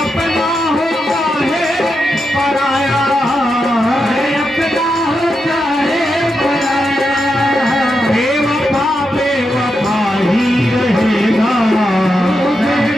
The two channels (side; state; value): both; normal; correlation 0.86